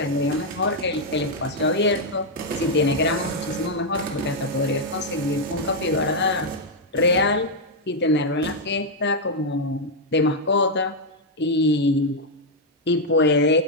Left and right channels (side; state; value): both; normal; correlation -0.02